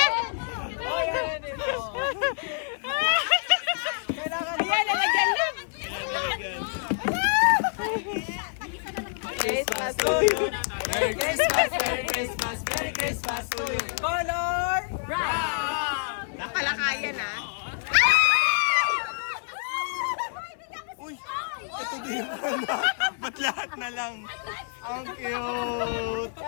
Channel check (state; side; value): silent; right; digital silence